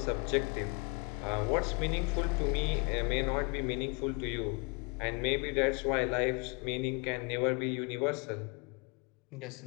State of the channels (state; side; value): quieter; right; 32.3 dB